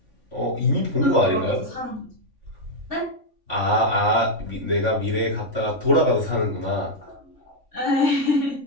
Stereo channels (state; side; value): late; left; 3.5 ms